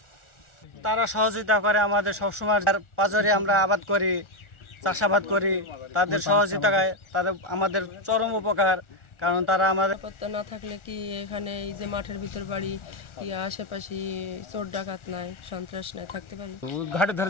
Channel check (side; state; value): right; late; 1.4 ms